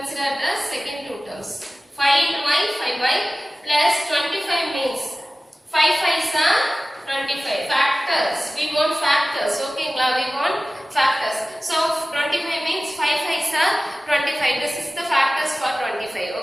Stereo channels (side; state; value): both; normal; correlation 0.97